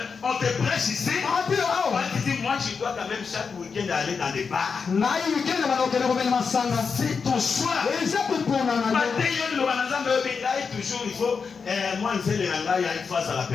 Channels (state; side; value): quieter; right; 5.5 dB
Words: on te prêche ici. Toi, tu dis, moi, je dois quand même chaque week-end aller dans des bars. C'est ton choix. Toujours, il faut, moi, je sais, il y a une phase à la